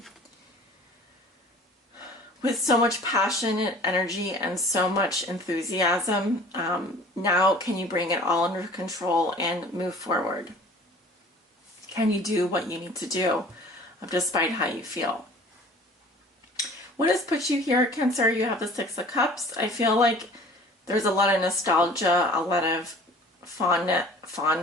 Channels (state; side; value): normal; both; correlation 0.47